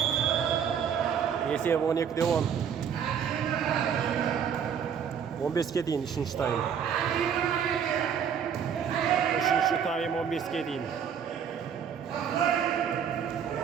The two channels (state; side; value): quieter; left; 7.7 dB